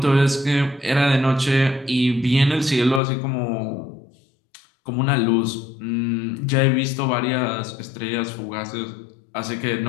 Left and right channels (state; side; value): drops out; right; at 3.0 s